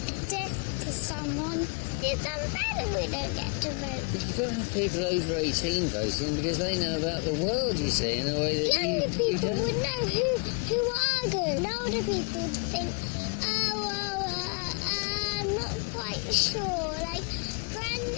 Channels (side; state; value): right; quieter; 35.6 dB